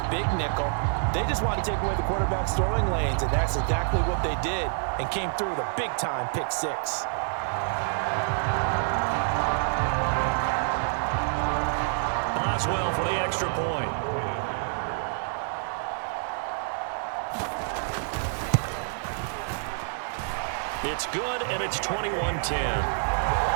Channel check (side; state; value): left; silent; digital silence